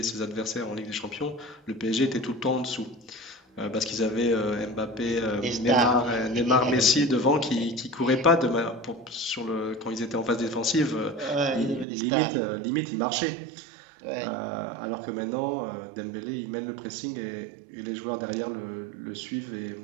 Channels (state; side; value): drops out; left; at 11.9 s